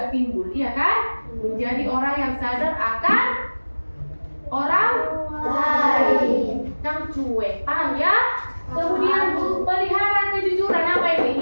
timbul, iya kan? Menjadi orang yang sadar akan orang lain. Yang cuek, paham ya? Kemudian pelihara kejujuran apa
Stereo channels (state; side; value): inverted; both; correlation -1.00